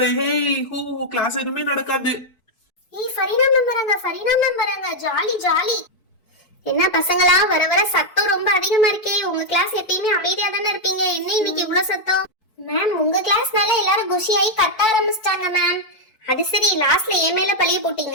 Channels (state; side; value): late; right; 4.6 ms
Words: ஹே ஹூ, கிளாஸ் எதுவுமே நடக்காது. ஏய், ஃபரீனா மேம் வராங்க, ஃபரீனா மேம் வராங்க, ஜாலி ஜாலி. என்ன பசங்களா, வர வர சத்தம் ரொம்ப அதிகமா இருக்கே. உங்க கிளாஸ் எப்பயுமே அமைதியா தானே இருப்பீங்க, என்ன இன்னைக்கு இவ்வளவு சத்தம்? மேம், உங்க கிளாஸ்னால எல்லாரும் குஷியாயி கத்த ஆரம்பிச்சிட்டாங்க மேம். அது சரி, லாஸ்ட்ல என் மேல பழிய